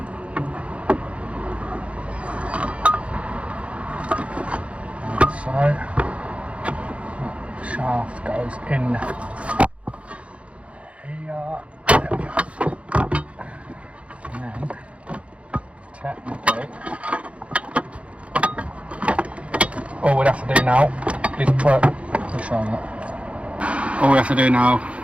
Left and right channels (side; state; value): left; late; 0.062 ms